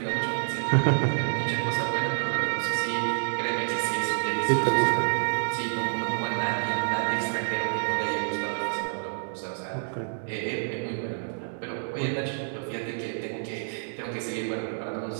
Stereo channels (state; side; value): silent; left; digital silence